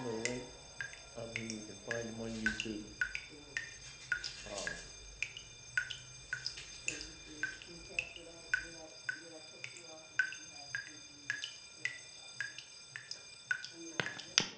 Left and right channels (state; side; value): identical; both; correlation 1.00